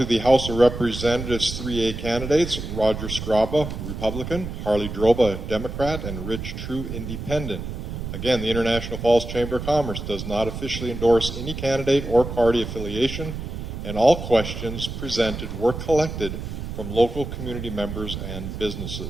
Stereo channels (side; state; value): right; noise; rumble, 7 dB below the sound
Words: the House of Representatives 3A candidates: Roger Scraba, Republican; Harley Droba, Democrat; and Rich True, Independent. Again, the International Falls Chamber of Commerce does not officially endorse any candidate or party affiliation, and all questions presented were collected from local community members and